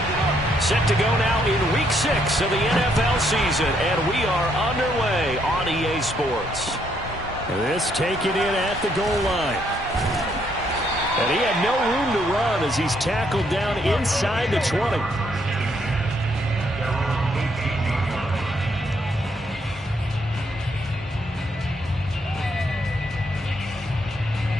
Set to go now in Week 6 of the NFL season, and we are underway on EA Sports. This taken in at the goal line. And he had no room to run as he's tackled down inside the 20.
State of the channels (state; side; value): normal; both; correlation 0.73